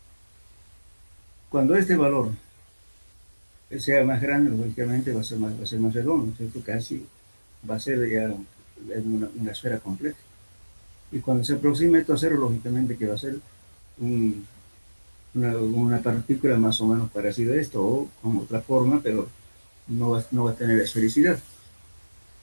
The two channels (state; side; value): inverted; both; correlation -1.00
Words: Cuando este valor sea más grande, lógicamente va a ser más redondo, ¿cierto? Casi va a ser ya una esfera completa. Y cuando se aproxime esto a cero, lógicamente que va a ser una partícula más o menos parecida a esto, o con otra forma, pero no va a tener esfericidad.